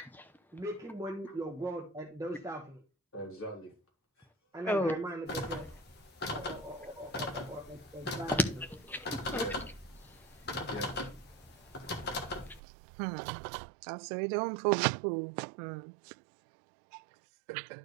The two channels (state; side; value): drops out; left; at 12.6 s